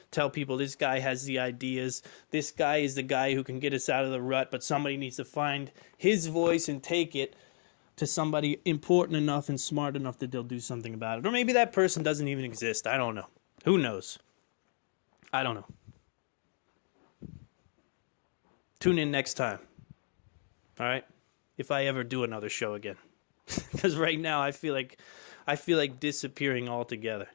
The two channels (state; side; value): silent; right; 55 dB below the other